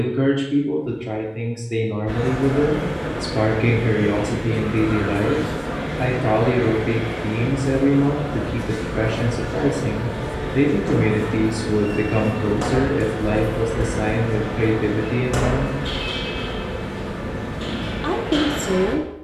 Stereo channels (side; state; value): both; identical; correlation 1.00